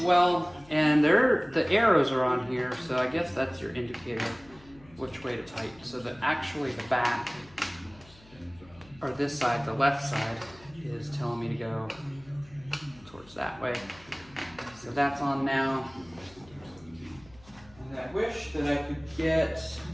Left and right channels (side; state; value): left; noise; hum, 25 dB below the sound